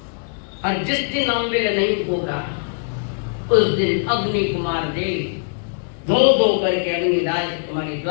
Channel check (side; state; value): right; silent; 65 dB below the other